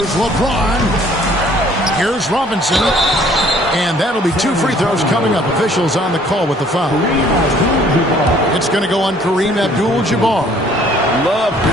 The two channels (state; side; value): normal; both; correlation 0.58